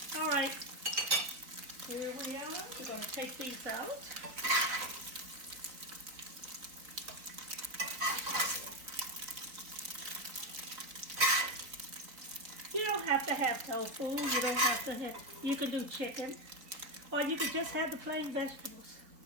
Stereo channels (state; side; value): late; left; 4.0 ms